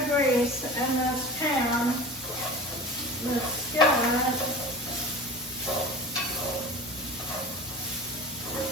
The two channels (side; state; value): both; normal; correlation 0.36